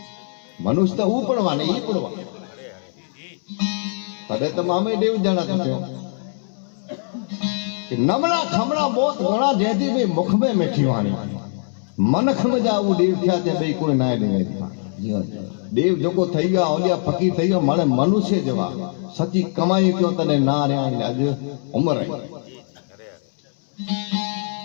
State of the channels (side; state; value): right; silent; 64 dB below the other